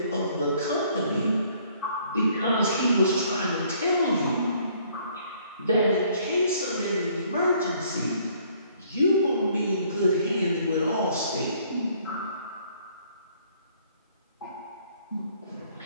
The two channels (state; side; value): inverted; both; correlation -0.62